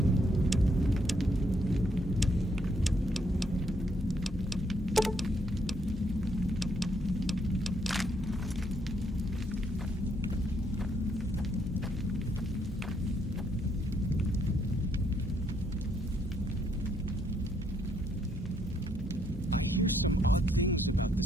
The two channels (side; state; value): both; normal; correlation 0.72